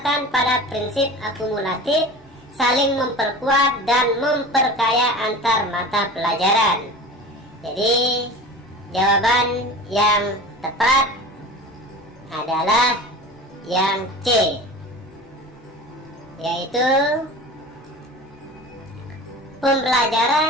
pada prinsip akumulatif, saling memperkuat dan memperkaya antar mata pelajaran. Jadi jawaban yang tepat adalah yang C, yaitu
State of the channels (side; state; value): both; normal; correlation 0.35